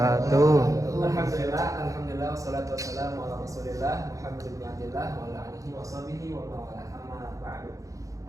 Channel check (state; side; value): late; left; 0.16 ms